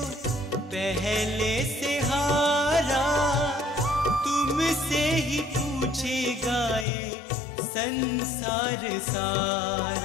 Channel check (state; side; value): drops out; right; at 6.9 s